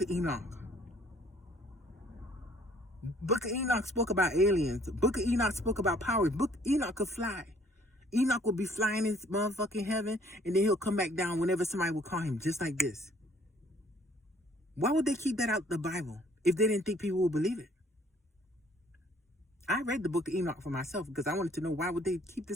of Enoch? Book of Enoch spoke about aliens. Book of Enoch spoke about powers. Book of Enoch could fly. Enoch will be flying in motherfucking heaven, and then he'll come back down whenever somebody will call him, just like this. Why would they keep that out the Bible if they didn't think people would believe it? I read the Book of Enoch for myself because I wanted to know why would they keep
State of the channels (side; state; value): both; normal; correlation 0.60